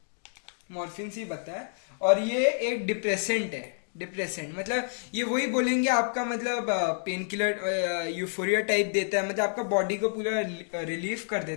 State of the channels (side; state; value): right; silent; digital silence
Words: मॉर्फिन से ही बनता है। और ये एक डिप्रेसेंट है। डिप्रेसेंट मतलब ये वही बोलेंगे आपका, मतलब पेन किलर, यूफोरिया टाइप देता है, मतलब आपका बॉडी को पूरा रिलीफ कर